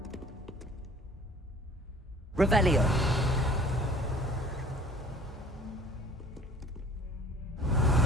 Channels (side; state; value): both; normal; correlation 0.51